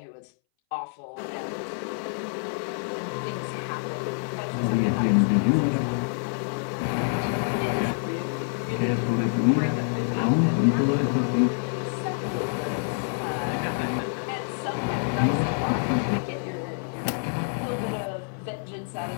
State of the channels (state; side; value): silent; right; 60 dB below the other